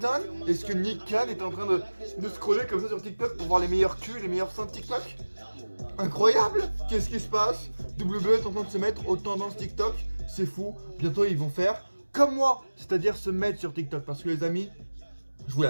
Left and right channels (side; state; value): both; inverted; correlation -1.00